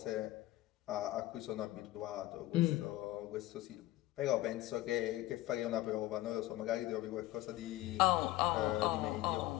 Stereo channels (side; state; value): right; quieter; 16.4 dB